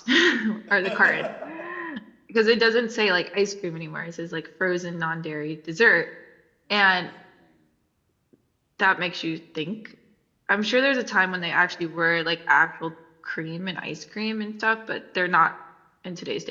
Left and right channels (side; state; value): both; identical; correlation 1.00